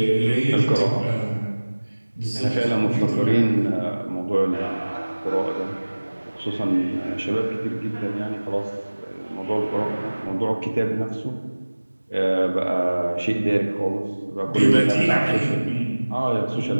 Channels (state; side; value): inverted; both; correlation -1.00